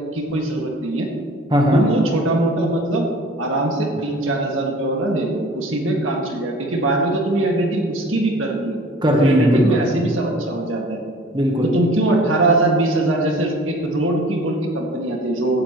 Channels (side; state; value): both; normal; correlation 0.47